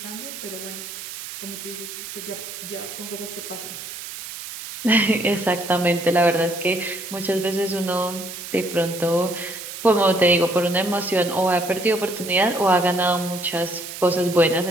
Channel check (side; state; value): right; noise; hiss, 10 dB below the sound